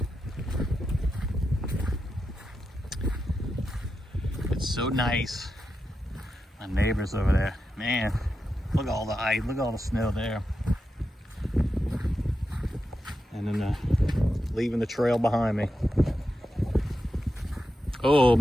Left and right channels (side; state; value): both; normal; correlation 0.88